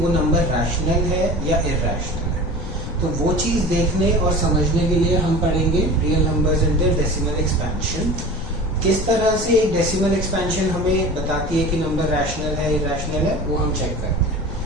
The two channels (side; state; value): left; noise; rumble, 8 dB below the sound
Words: नंबर रैशनल है या इरैशनल है। तो वो चीज़ देखने और समझने के लिए हम पढ़ेंगे real numbers and their decimal expansion. किस तरह से एक डेसिमल एक्सपेंशन हमें बताती है कि नंबर रैशनल है इरैशनल है, वो हम चेक करते हैं।